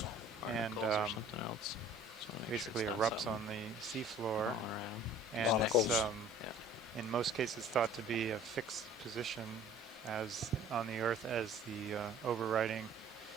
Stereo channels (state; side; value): normal; both; correlation 0.49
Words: and basically erupts on the seafloor, and it's in most cases thought to be a fixed position as on the Earth as the overriding